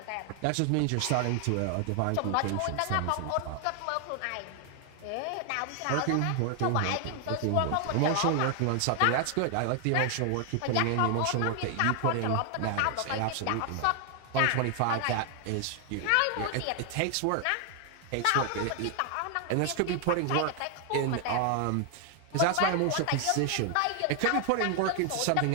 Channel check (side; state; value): both; different; correlation 0.00